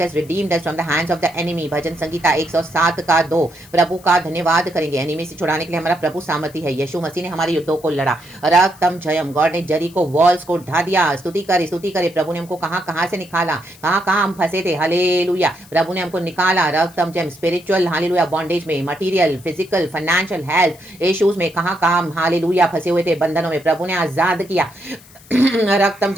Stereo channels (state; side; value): noise; left; hiss, 24 dB below the sound